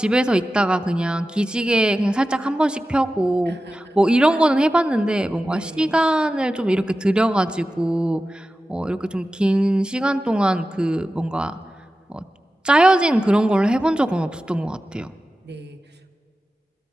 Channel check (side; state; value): both; normal; correlation 0.94